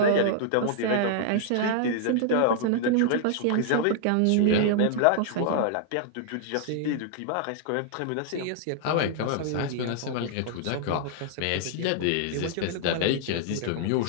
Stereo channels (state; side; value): different; both; correlation -0.01